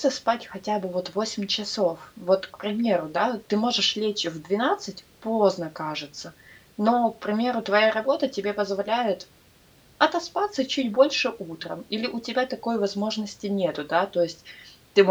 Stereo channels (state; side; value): identical; both; correlation 1.00